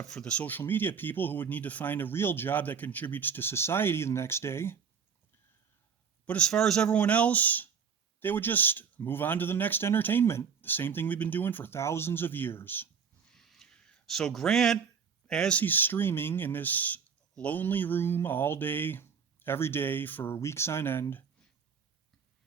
for the social media people who would need to find a real job that contributes to society the next day. But as far as everyone else, they would just move on to the next entertainment, the same thing we've been doing for thousands of years. So Grant, as he's streaming in this lonely room all day, every day for weeks on end,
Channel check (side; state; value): left; quieter; 6.6 dB